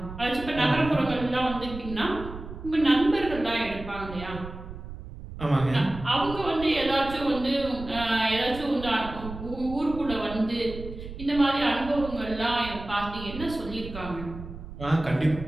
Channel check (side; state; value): right; noise; rumble, 12 dB below the sound